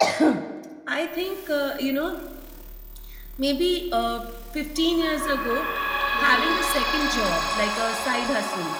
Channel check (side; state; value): both; identical; correlation 1.00